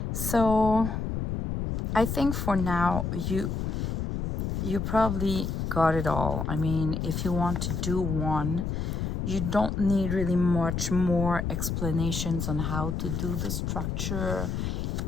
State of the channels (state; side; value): noise; left; rumble, 2 dB below the sound